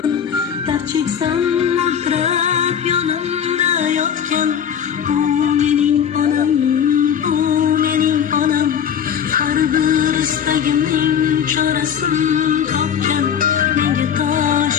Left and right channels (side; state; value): right; quieter; 8.3 dB